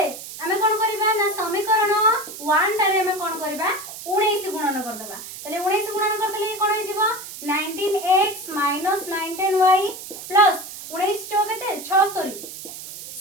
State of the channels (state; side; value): noise; right; hiss, 12 dB below the sound